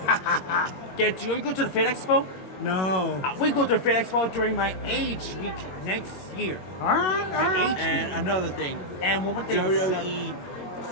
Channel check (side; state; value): right; late; 21 ms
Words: Get you go to the Fit Expo? No. We go to the Fit Expo during my age week next year. All right. My age And another thing, and one more thing. WWE